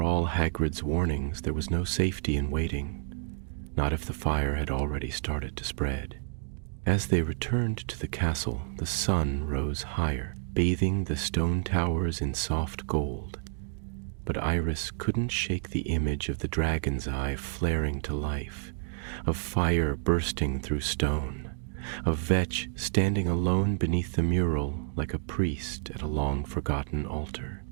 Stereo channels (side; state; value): left; silent; digital silence